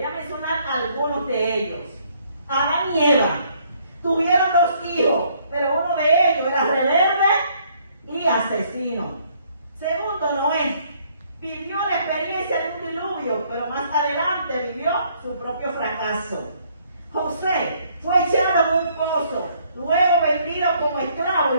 a mencionar algunos de ellos. Adán y Eva tuvieron 2 hijos, pero uno de ellos era rebelde y asesino. Segundo, Noé vivió la experiencia de un diluvio, pero más adelante vivió su propio fracaso. José fue echado en un pozo, luego vendido como esclavo y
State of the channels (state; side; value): inverted; both; correlation -0.66